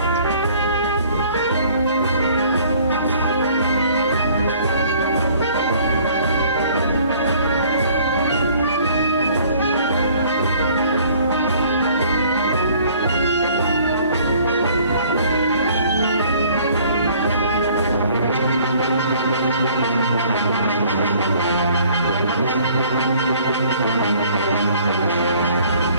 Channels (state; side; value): inverted; both; correlation -0.56